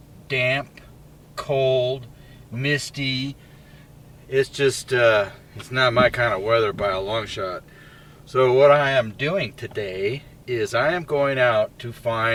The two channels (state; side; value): identical; both; correlation 1.00